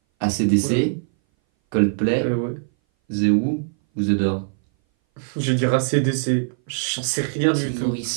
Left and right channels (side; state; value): left; silent; 60 dB below the other